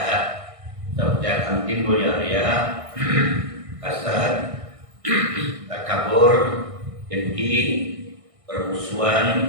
seperti akan timbul yang riya, hasad, takabur, dengki, permusuhan,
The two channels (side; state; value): left; late; 1.6 ms